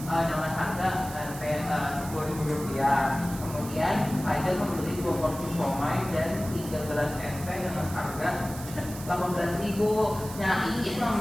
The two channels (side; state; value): right; noise; hiss, 13 dB below the sound